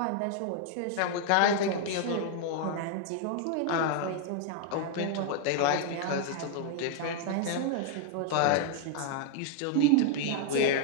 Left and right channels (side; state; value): both; different; correlation 0.00